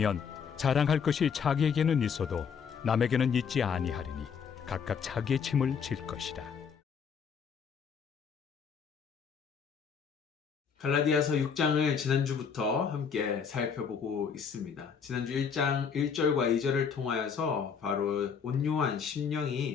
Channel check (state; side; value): quieter; right; 6.6 dB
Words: 자랑할 것이 자기에게는 있어도 남에게는 있지 아니하리니 각각 자기의 짐을 질 것이라. 갈라디아서 6장을 지난주부터 함께 살펴보고 있습니다. 지난주 1장 1절과 2절을 통하여서 바로 온유한